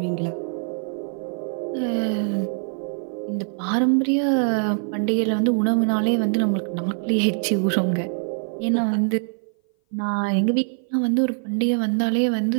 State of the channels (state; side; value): silent; left; 58 dB below the other